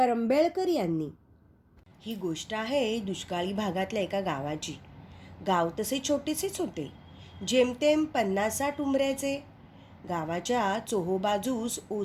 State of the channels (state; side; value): identical; both; correlation 1.00